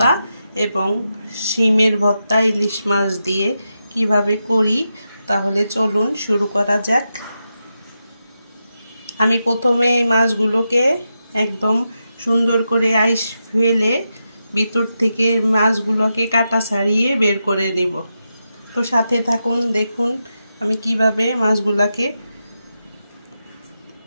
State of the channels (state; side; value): inverted; both; correlation -0.88